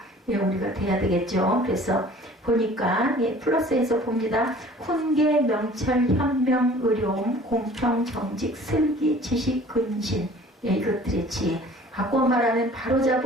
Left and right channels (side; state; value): both; normal; correlation 0.49